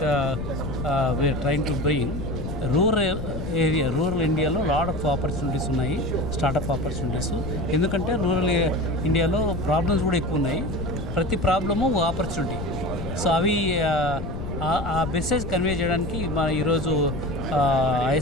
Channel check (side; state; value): left; noise; rumble, 6 dB below the sound